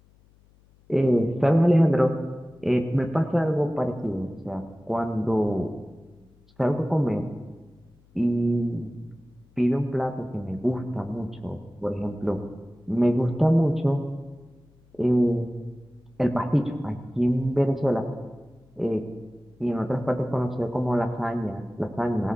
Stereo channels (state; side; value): noise; left; hum, 30 dB below the sound